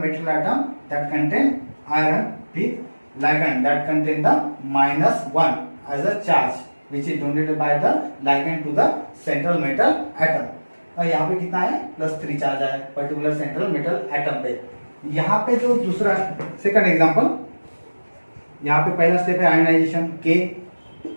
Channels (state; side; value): inverted; both; correlation -1.00